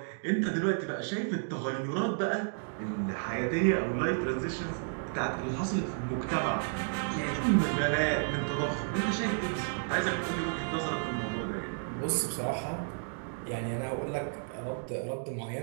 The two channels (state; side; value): silent; left; digital silence